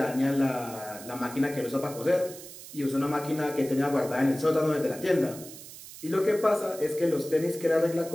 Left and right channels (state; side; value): noise; right; hiss, 15 dB below the sound